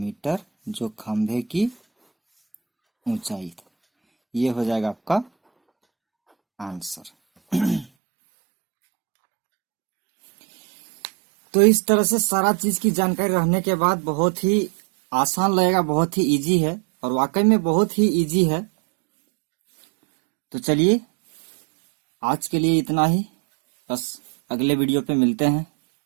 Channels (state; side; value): drops out; left; at 7.9 s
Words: जो खंभे की ऊंचाई थी। ये हो जाएगा आपका आंसर। तो इस तरह से सारा चीज की जानकारी रहने के बाद बहुत ही आसान लगेगा, बहुत ही इजी है और वाकई में बहुत ही इजी है। तो चलिए आज के लिए इतना ही, बस अगले वीडियो पे मिलते हैं।